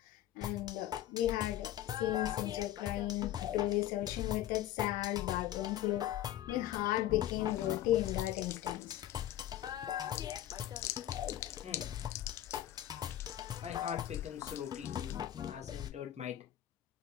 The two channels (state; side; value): quieter; right; 12.7 dB